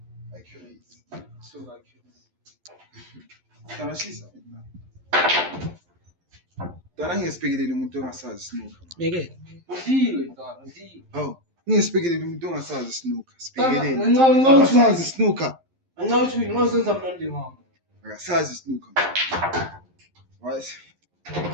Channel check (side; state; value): left; late; 11 ms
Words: Accuracy. So accurate. Tana shisa. Tana ngiyesphekelele umuntu ongasazi snooker. Meke. Ndiwe dona, ndiwe. Oh, ngiyesphekelele umuntu ongasazi snooker. Tana, Sphekelele. ngincane Akasazi snooker. Angathi ngosenza mnandi ngami. Akasazi snooker. Right?